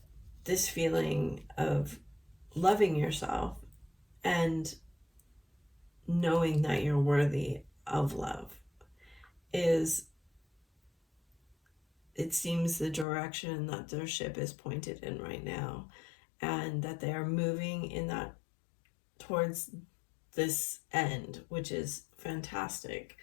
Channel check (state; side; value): drops out; right; at 13.1 s